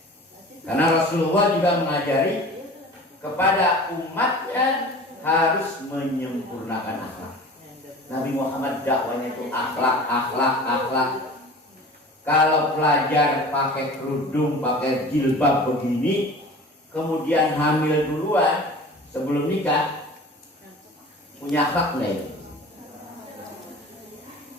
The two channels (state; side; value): normal; both; correlation 0.40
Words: Karena Rasulullah juga mengajari kepada umatnya harus menyempurnakan akhlak. Nabi Muhammad dakwanya itu akhlak. Kalau pelajar pakai kerudung, pakai jilbab begini, kemudian hamil duluan sebelum nikah, punya akhlak lain.